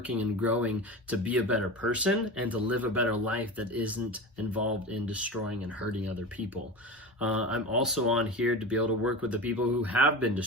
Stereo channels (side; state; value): both; normal; correlation 0.27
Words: and growing to be a better person and to live a better life that isn't involved in destroying and hurting other people. I'm also on here to be able to work with the people who have been